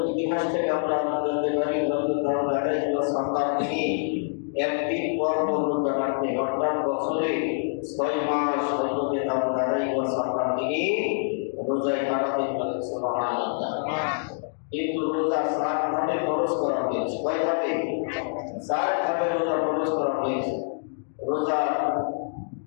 ইতিহাস থেকে আমরা জানতে পারি হযরত দাউদ আলাইহিস সালাম তিনি একদিন পর রোজা রাখতে অর্থাৎ বছরে 6 মাস হযরত দাউদ আলাইহিস সালাম তিনি রোজায় কাটাতেন। সুবহানাল্লাহ। কিন্তু রোজা 7 ভাবে ফরজ করা হয়েছে। কয় ভাবে? 4 ভাবে রোজা ফরজ করা হয়েছে। রোজা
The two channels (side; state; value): right; silent; digital silence